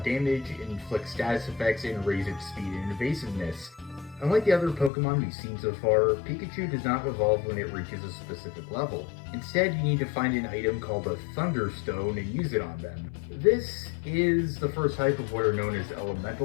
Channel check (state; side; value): drops out; right; at 4.9 s